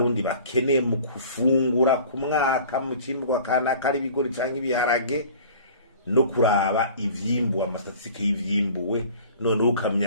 bakeneye mu kufungura ku mwaka mu cimbwa kana kari bigori canke ibiharage no kuraba ivyimbu amastatistike y'ivyimbuwe none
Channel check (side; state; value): both; inverted; correlation -0.46